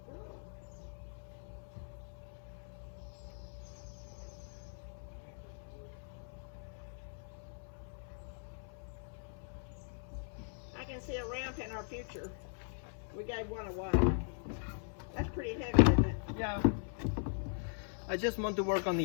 girl. I can see a ramp in our future. We gave one away. That's pretty heavy, isn't it? Yeah. I just want to work on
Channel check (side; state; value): right; silent; 51 dB below the other